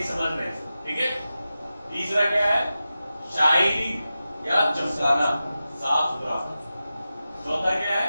समझ में है। ठीक है, तीसरा क्या है, शाइनिंग या चमकाना, साफ सुथरा। चौथा क्या है,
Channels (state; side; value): inverted; both; correlation -0.93